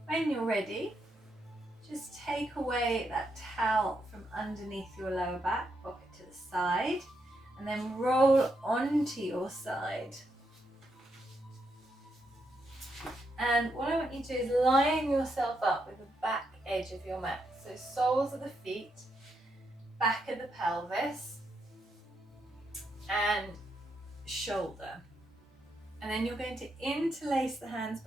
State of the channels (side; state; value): both; normal; correlation 0.81